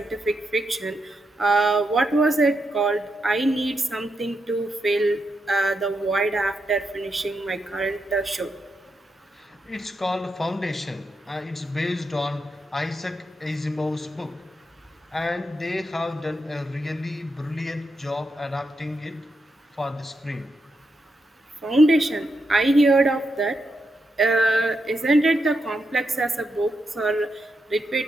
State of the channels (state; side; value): normal; both; correlation 0.83